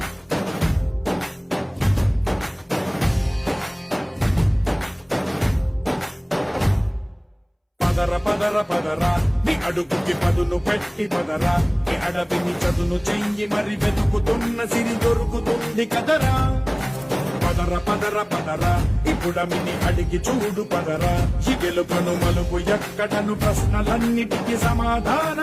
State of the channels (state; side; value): identical; both; correlation 1.00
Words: పదర పదర పదరా నీ అడుగుకి పదును పెట్టి పదరా నీ అడవిని చదును చెయ్యి మరి వెతుకుతున్న సిరి దొరుకుతుంది కదరా పదర పదర పదరా ఇప్పుడమిని అడిగి చూడు పదరా ఈ గెలుపను మలుపు ఎక్కడను ప్రశ్నలన్నిటికీ